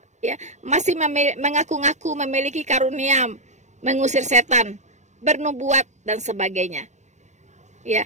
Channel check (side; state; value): left; late; 0.34 ms